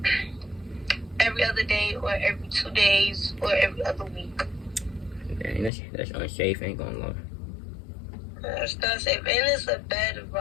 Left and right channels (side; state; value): right; drops out; at 5.7 s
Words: every other day or every 2 days or every other week. Dang, that's unsafe, ain't gonna lie. It's not safe. And it's a bad